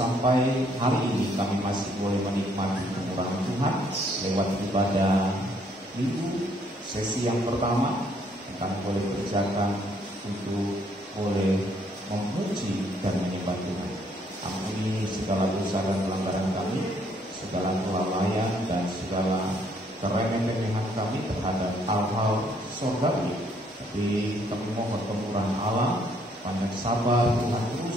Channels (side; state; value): both; normal; correlation 0.67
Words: hari ini kami masih boleh menikmati kemurahan Tuhan lewat ibadah minggu, sesi yang pertama kami boleh kerjakan untuk boleh memuji dan menyembah Tuhan. Ampuni segala dosa dan pelanggaran kami, segala kelalaian dan segala keremehan kami terhadap hal-hal surgawi. Tapi kami mohon kemurahan Allah, panjang sabar Tuhan